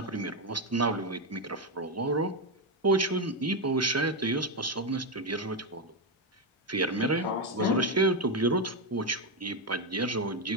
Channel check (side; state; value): both; normal; correlation 0.07